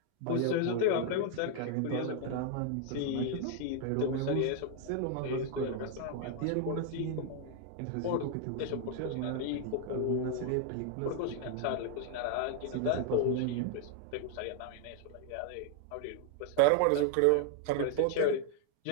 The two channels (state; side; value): different; both; correlation 0.00